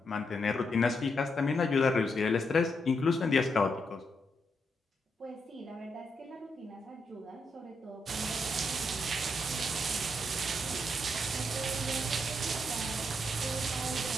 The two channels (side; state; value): both; normal; correlation 0.80